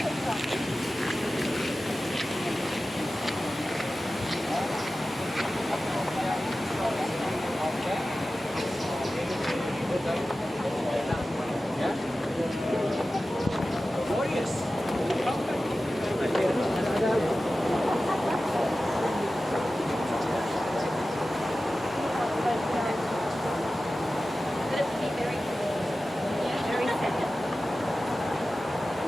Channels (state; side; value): normal; both; correlation 0.95